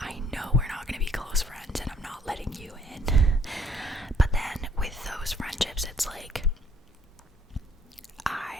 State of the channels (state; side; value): normal; both; correlation 0.62